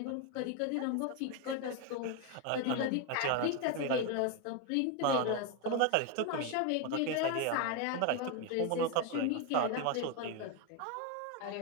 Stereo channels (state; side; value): different; both; correlation 0.01